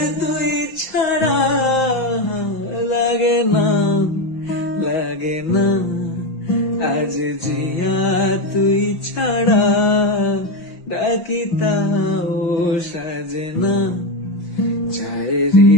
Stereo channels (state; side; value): late; right; 5.8 ms